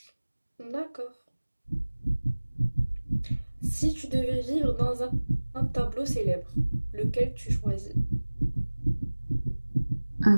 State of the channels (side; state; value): both; inverted; correlation -1.00